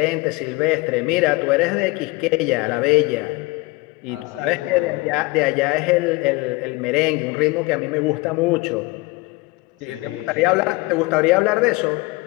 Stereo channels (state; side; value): quieter; right; 23.3 dB